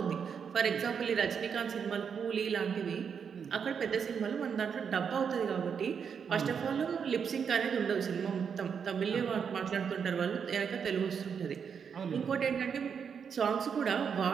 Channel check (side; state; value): left; quieter; 6.8 dB